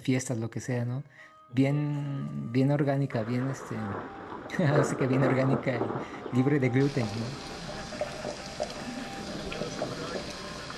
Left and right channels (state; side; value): identical; both; correlation 1.00